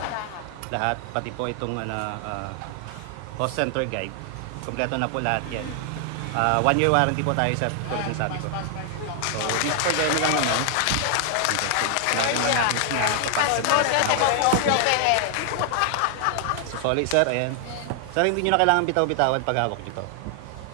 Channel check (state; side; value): different; both; correlation 0.00